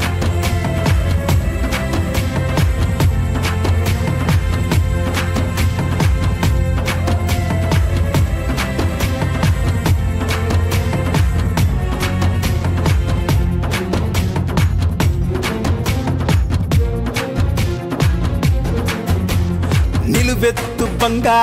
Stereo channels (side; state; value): both; identical; correlation 1.00